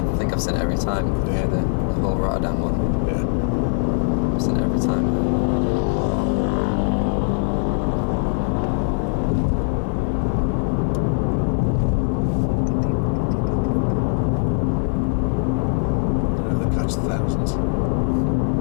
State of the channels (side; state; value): right; silent; 65 dB below the other